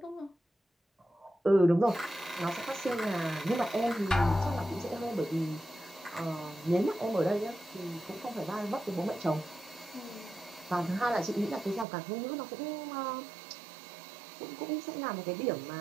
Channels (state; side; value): drops out; left; at 11.9 s